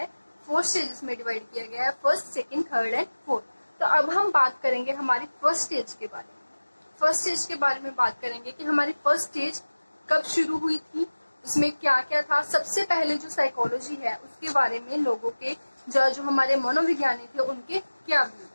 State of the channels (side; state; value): both; inverted; correlation -1.00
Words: 4 स्टेजेस में डिवाइड किया गया है, first, second, third and fourth. तो अब हम बात करेंगे हमारी फर्स्ट स्टेज के बारे में। फर्स्ट स्टेज के बारे में बात करेंगे कि हमारी फर्स्ट स्टेज कब शुरू हुई थी, उसमें क्या क्या था। सबसे पहले जो साइकोलॉजी है उसके बारे में लोगों के जो हमारे मनोविज्ञानी थे उनके क्या व्यू